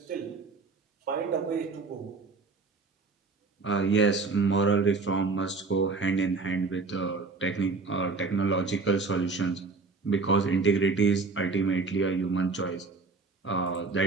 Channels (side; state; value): left; quieter; 4.1 dB